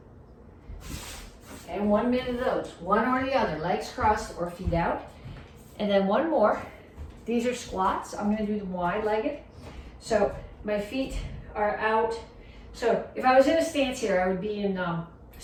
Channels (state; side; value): identical; both; correlation 1.00